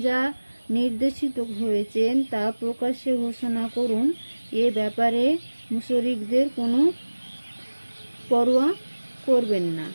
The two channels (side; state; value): both; inverted; correlation -1.00